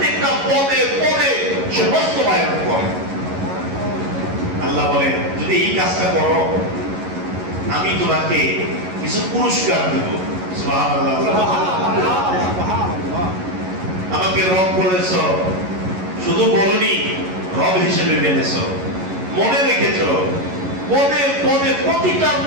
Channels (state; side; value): late; left; 11 ms